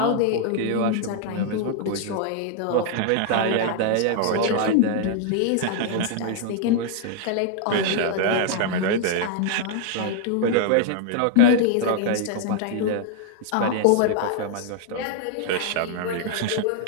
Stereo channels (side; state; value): both; different; correlation 0.00